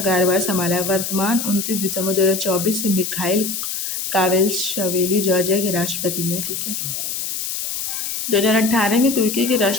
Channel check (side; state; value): left; noise; hiss, 4 dB below the sound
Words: कार्यभार संभाला। वर्तमान 29 दिसंबर 2024 से मिखाइल कावेलशवेली जॉर्जिया के राष्ट्रपति हैं। ठीक है। 2018 में तुर्की के